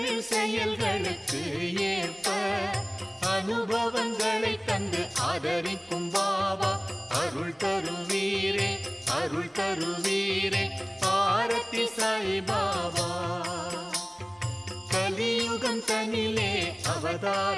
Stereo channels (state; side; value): identical; both; correlation 1.00